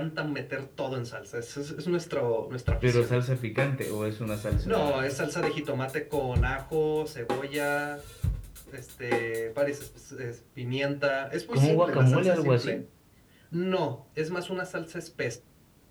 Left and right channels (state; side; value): identical; both; correlation 1.00